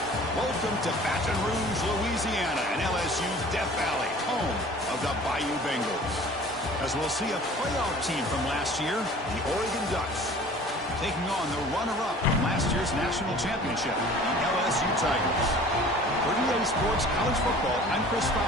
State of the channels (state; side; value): normal; both; correlation 0.46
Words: Welcome to Baton Rouge, Louisiana, and LSU's Death Valley, home of the Bayou Bengals. As we'll see a playoff team from last year, the Oregon Ducks, taking on the runner-up from last year's national championship, the LSU Tigers. For EA Sports College Football, I'm Chris